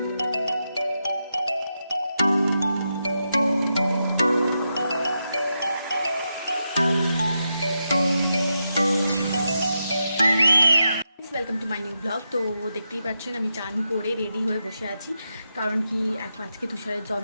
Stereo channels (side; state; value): both; inverted; correlation -0.86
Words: Welcome to my new blog. তো দেখতেই পাচ্ছেন আমি চান করে রেডি হয়ে বসে আছি, কারণ কি আজকে তুষারের